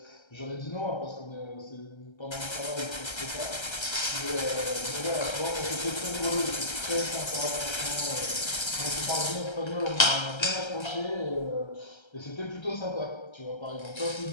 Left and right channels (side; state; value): right; late; 1.3 ms